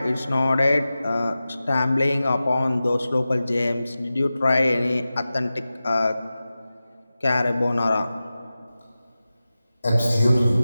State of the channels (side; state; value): both; inverted; correlation -0.95